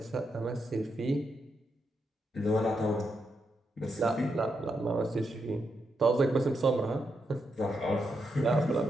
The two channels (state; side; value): normal; both; correlation 0.83